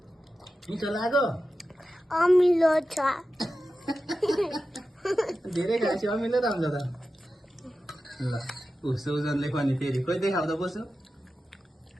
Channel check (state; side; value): normal; both; correlation 0.93